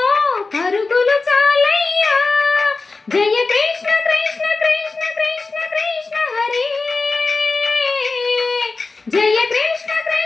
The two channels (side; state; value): right; quieter; 3.9 dB